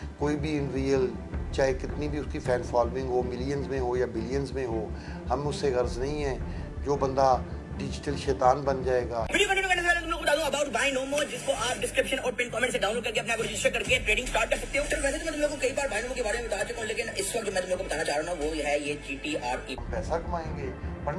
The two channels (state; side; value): identical; both; correlation 1.00